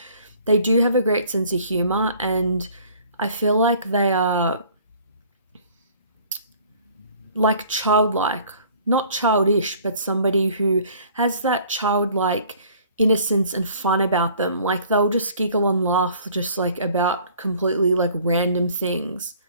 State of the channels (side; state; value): both; inverted; correlation -0.54